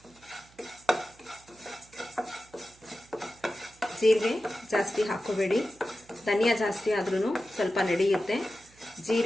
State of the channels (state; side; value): noise; right; hum, 28 dB below the sound